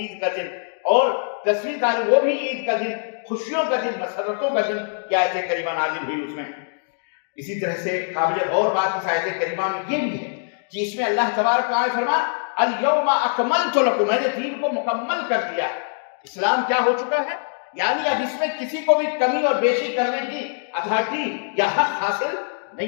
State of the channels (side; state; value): right; silent; digital silence